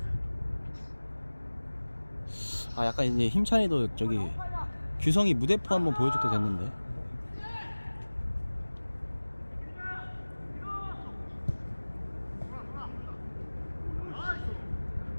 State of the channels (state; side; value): inverted; both; correlation -1.00